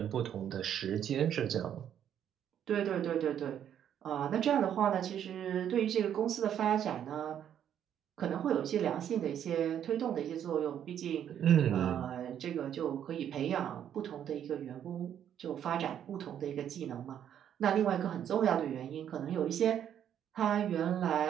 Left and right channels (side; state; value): left; quieter; 9.6 dB